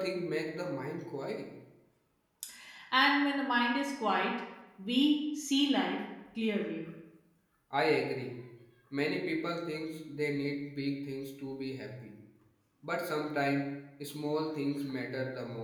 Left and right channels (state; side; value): identical; both; correlation 1.00